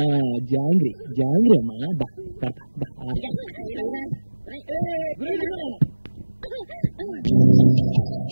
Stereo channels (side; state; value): both; inverted; correlation -1.00